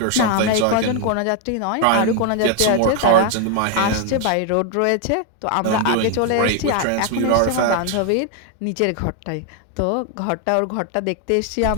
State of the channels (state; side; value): different; both; correlation 0.00